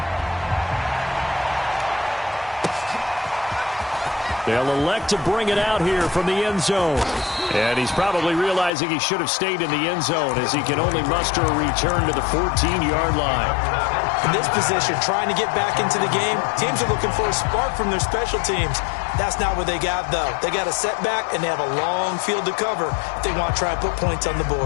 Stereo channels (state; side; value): drops out; right; at 8.7 s